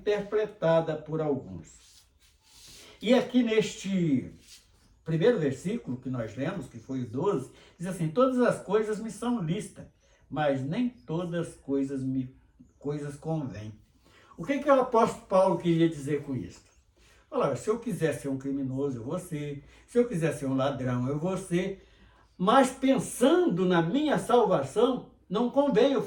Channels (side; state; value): both; identical; correlation 1.00